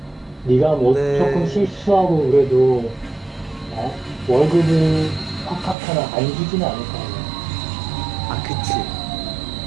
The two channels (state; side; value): drops out; left; at 5.8 s